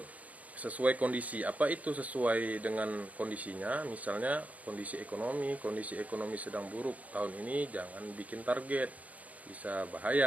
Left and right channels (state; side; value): late; left; 0.071 ms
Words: Sesuai kondisi. Apa itu sesuai dengan kondisinya? Misalnya kondisi ekonomi sedang buruk tahun ini, jangan bikin target, bisa